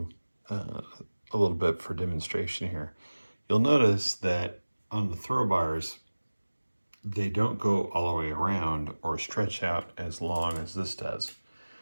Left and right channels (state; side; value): inverted; both; correlation -1.00